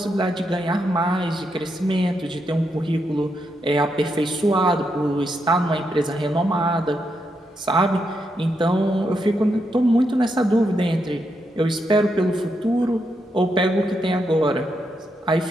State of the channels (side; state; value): both; normal; correlation 0.82